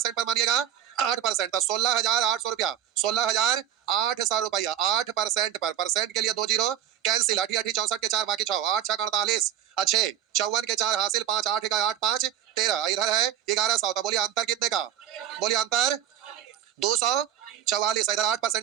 पर मानिएगा? 8%, तो 16,800 रुपया, 16,800 रुपया 8% पर, परसेंट के लिए 2 जीरो कैंसिल, 8 8 64 के 4 बाकी 6, 8 6 48, अच्छे 54 के 4 हासिल 5 8 का 8 5 13, इधर है 1100, तो बोलिए अंतर कितने का? बोलिए अंतर 244, इधर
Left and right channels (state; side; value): quieter; left; 10.5 dB